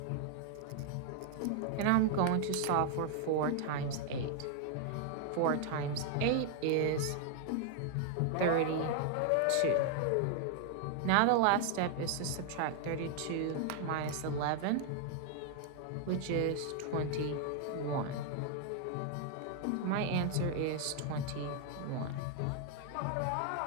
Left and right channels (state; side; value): different; both; correlation 0.00